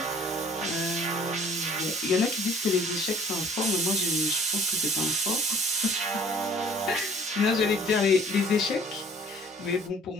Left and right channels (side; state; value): both; normal; correlation 0.54